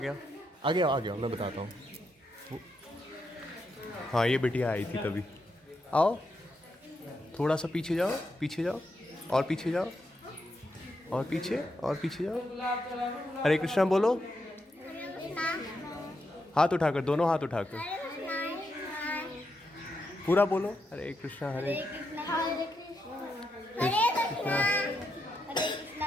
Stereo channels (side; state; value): both; normal; correlation 0.83